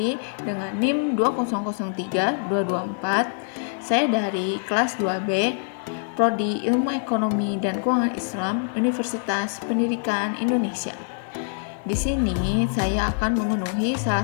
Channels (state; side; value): silent; right; 62 dB below the other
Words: dengan NIM 2003224. Saya dari kelas 2B, Prodi Ilmu Ekonomi dan Keuangan Islam, Universitas Pendidikan Indonesia. Di sini saya akan memenuhi salah